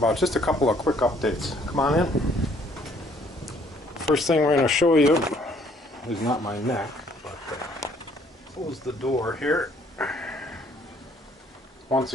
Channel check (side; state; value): both; normal; correlation 0.63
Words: just a couple of quick updates. Come on in. First thing we're going to show you is not my neck, but close the door here. Once